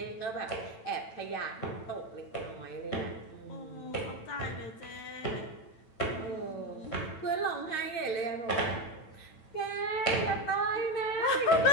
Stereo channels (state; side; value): late; right; 9.0 ms